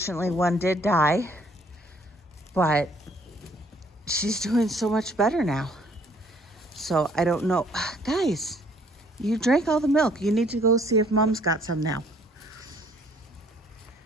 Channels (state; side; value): normal; both; correlation 0.61